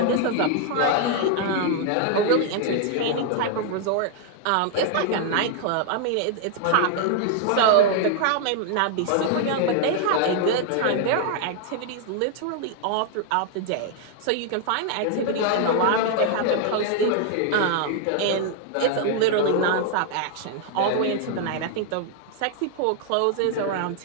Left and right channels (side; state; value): both; different; correlation 0.00